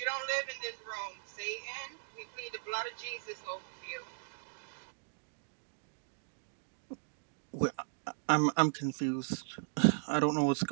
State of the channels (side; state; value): left; silent; digital silence